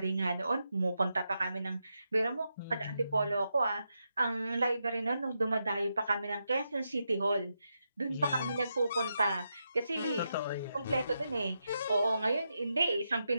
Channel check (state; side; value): inverted; both; correlation -0.85